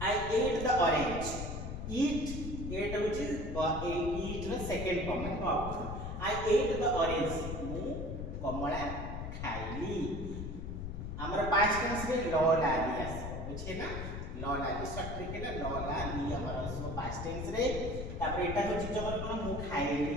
I ate the orange, eat which is eat ର सेकंड फॉर्म है verb. I ate the orange मु कमला खाइली। हमर पास्ट टेंस में ल लाली आस बुझे ना, ल लाली शॉर्ट ट्रिक है ल लाली हमर सो पास्ट टेंस रे। तापर एटा होची जबर कोन मु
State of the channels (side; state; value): left; noise; rumble, 5 dB below the sound